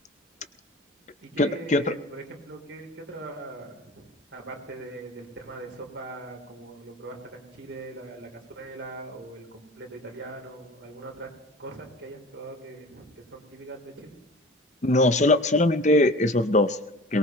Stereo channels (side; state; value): both; normal; correlation 0.40